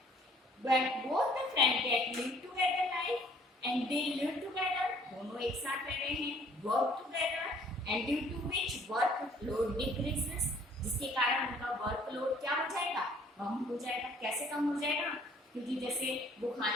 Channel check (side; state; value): both; normal; correlation 0.58